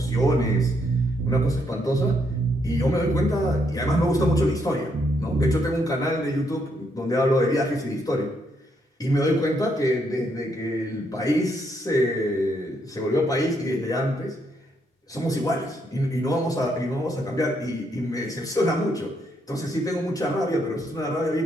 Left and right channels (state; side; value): normal; both; correlation 0.75